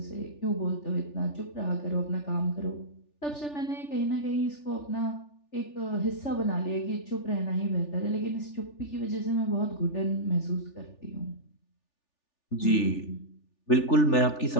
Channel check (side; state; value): right; late; 3.4 ms